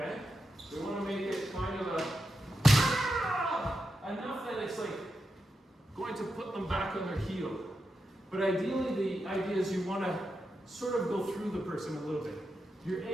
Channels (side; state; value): both; normal; correlation 0.87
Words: We want to make it kind of enough that it's like going to put them back on their heel. But ideally, the idea is you want to sort of go through the person a little bit. You're